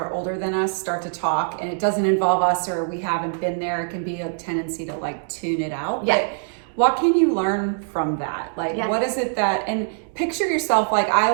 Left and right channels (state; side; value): silent; left; digital silence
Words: older than us start to talk, and it doesn't involve us or we haven't been there, it can be a tendency to, tune it out. Yeah. But what can you learn from that? What is it that, and picture yourself, I